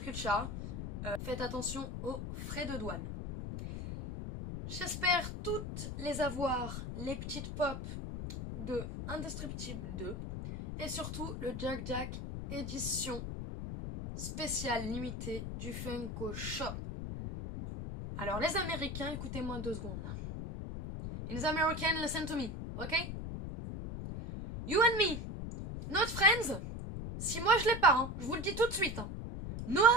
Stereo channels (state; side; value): noise; left; rumble, 6 dB below the sound